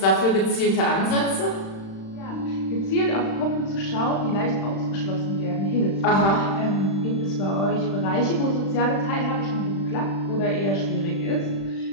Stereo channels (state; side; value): late; right; 36 ms